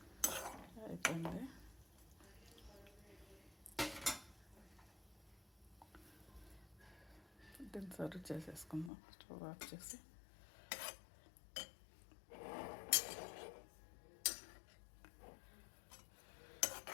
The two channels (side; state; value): right; drops out; at 8.9 s